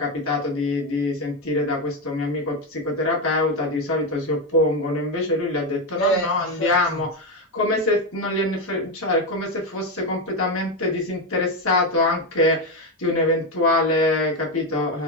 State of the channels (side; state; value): both; normal; correlation 0.10